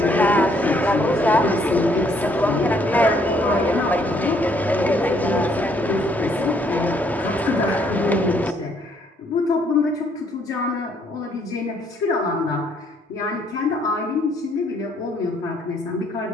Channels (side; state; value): both; normal; correlation 0.67